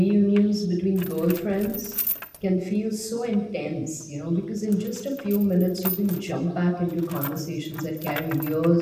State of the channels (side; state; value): both; identical; correlation 1.00